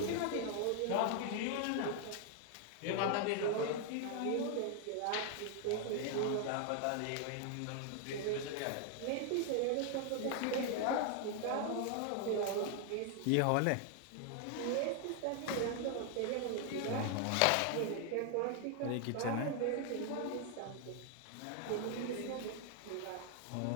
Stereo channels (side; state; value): both; different; correlation 0.00